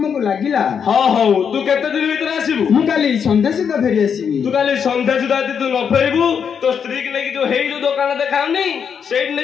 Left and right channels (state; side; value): quieter; right; 7.1 dB